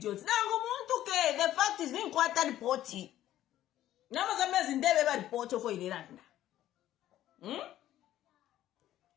Nango muntu ke, the fact is being quite reporty. Nama Zambia zindebe ba report for Iranda.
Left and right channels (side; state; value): right; quieter; 13.1 dB